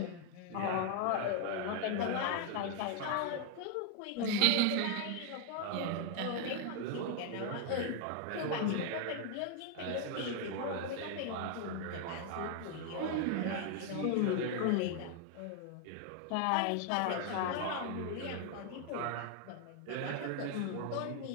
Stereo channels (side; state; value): both; different; correlation 0.00